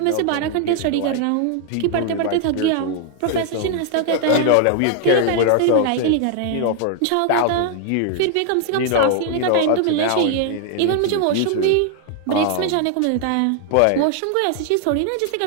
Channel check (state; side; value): different; both; correlation 0.00